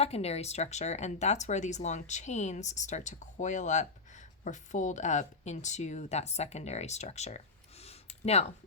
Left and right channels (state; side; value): quieter; right; 4.1 dB